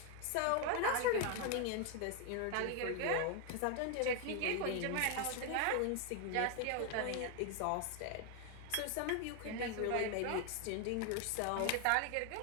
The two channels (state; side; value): different; both; correlation 0.01